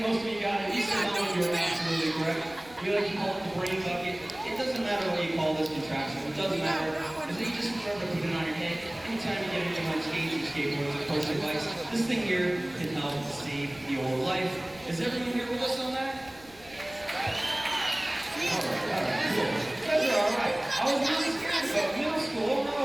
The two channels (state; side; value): noise; left; rumble, 23 dB below the sound